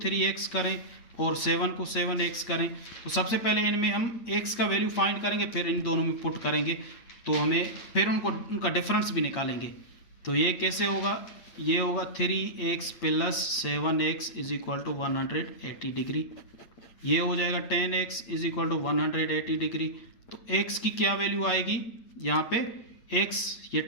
करें और 7 को 7x करें। तो सबसे पहले इनमें हम x का वैल्यू फाइंड करेंगे, फिर इन दोनों में पुट करेंगे, तो हमें फिर उनका डिफरेंस भी निकालेंगे। तो ये कैसे होगा, ये होगा 3x plus 7x is equal to 180 degree. ये हो जाएगा 10x is equal to 180 degree. तो x की क्या वैल्यू आएगी यहाँ पे, x ये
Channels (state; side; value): late; right; 8.6 ms